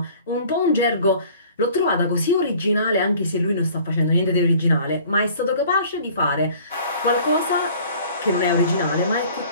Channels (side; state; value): both; inverted; correlation -0.51